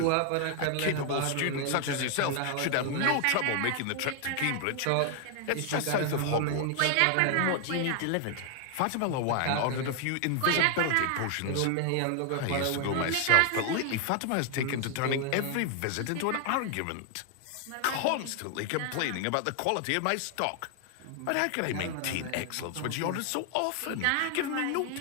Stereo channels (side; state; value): both; different; correlation 0.00